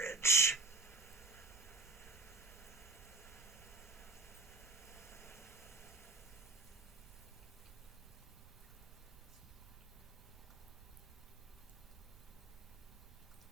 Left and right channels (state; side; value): quieter; left; 3.3 dB